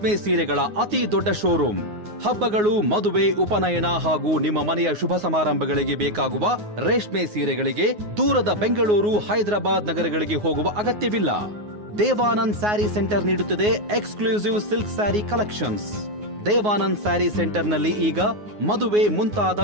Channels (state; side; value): late; left; 9.5 ms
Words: ಸೀರೆಗಳ ಅತಿ ದೊಡ್ಡ ಶೋರೂಮ್. ಹಬ್ಬಗಳು, ಮದುವೆ, ಉಪನಯನ ಹಾಗೂ ನಿಮ್ಮ ಮನೆಯ ಶುಭ ಸಮಾರಂಭಗಳಿಗೆ ಬೇಕಾಗುವ ರೇಷ್ಮೆ ಸೀರೆಗಳಿಗೆ ದೂರದ ಬೆಂಗಳೂರು, ಹೈದರಾಬಾದ್ ನಗರಗಳಿಗೆ ಹೋಗುವ ಅಗತ್ಯವಿಲ್ಲ. ದೇವಾನಂದ್ ಸ್ಯಾರಿ ಸೆಂಟರ್ ನೀಡುತ್ತಿದೆ exclusive silk sari collections. Devanand sari ಸೆಂಟರ್ನಲ್ಲಿ ಈಗ ಮದುವೆ